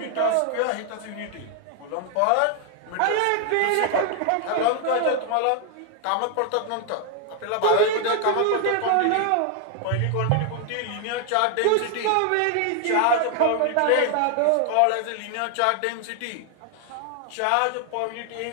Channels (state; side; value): different; both; correlation 0.00